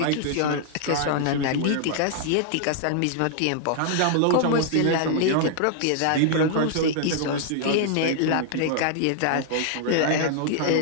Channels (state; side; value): different; both; correlation -0.01